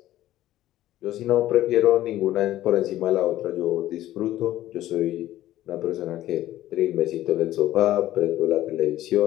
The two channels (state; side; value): quieter; right; 14.2 dB